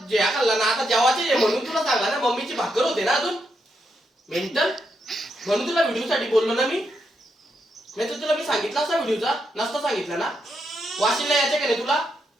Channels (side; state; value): both; normal; correlation 0.81